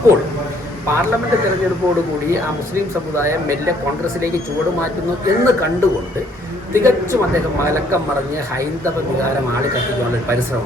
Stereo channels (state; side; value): normal; both; correlation 0.63